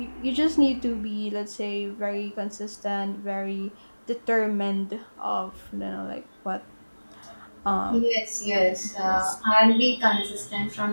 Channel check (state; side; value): inverted; both; correlation -1.00